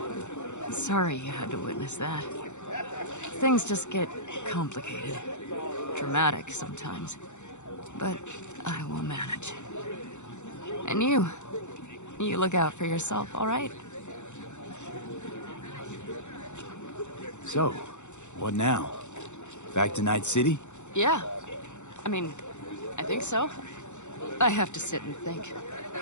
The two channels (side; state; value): right; late; 0.84 ms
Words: Sorry you had to witness that. Things just get complicated. Dramatic sometimes. But I will manage. And you look out for yourself, all right? So, what now? Back to Night City? Yeah. I mean, I think so. I have to sit and think.